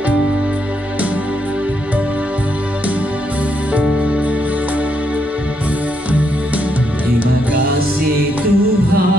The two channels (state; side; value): normal; both; correlation 0.77